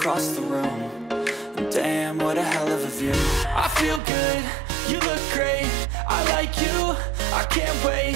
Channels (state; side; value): drops out; left; at 4.0 s